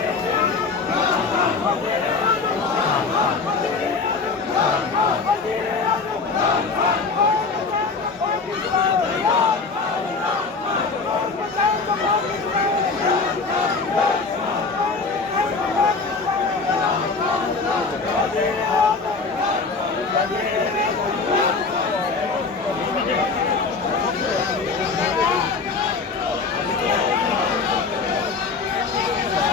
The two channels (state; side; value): quieter; right; 4.4 dB